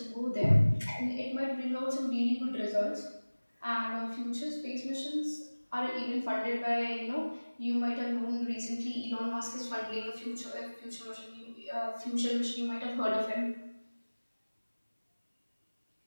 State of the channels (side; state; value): both; inverted; correlation -1.00